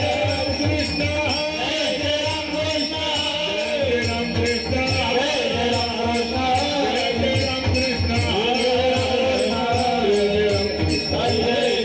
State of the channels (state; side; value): identical; both; correlation 1.00